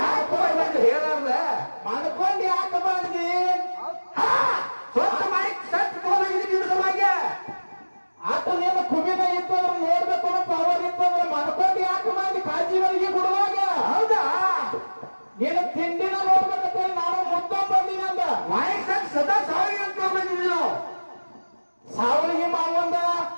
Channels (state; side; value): inverted; both; correlation -1.00